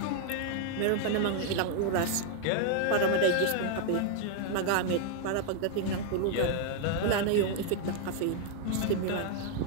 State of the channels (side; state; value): both; different; correlation 0.00